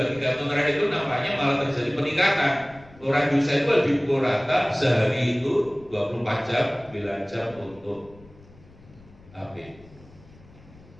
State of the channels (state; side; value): noise; left; rumble, 24 dB below the sound